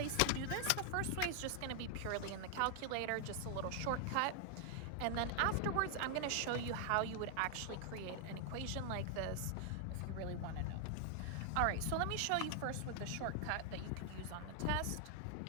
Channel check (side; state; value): both; different; correlation 0.00